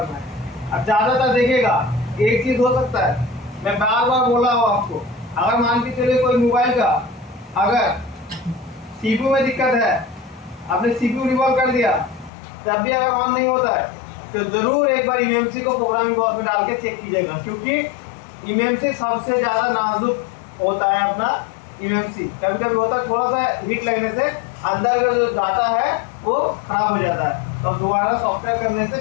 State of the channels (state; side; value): drops out; right; at 12.3 s